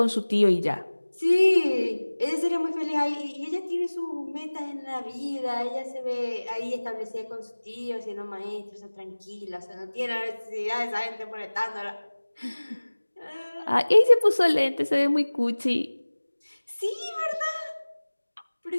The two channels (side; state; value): both; inverted; correlation -1.00